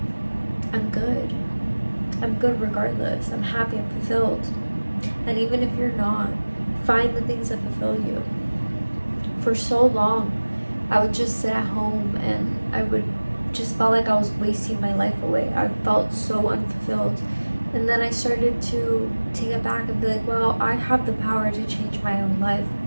I'm good. I'm good regardless. I'm happy, I'm fulfilled. And even if you're not, find the things that fulfill you. For so long, I would just sit at home and I would just felt like I was wasting my life away. I felt so unfulfilled. And then I started to take it back and be like, well, I have the power to change my own life.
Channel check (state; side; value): inverted; both; correlation -1.00